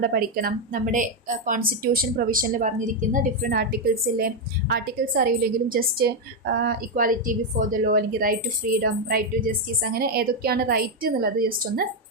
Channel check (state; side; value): normal; both; correlation 0.04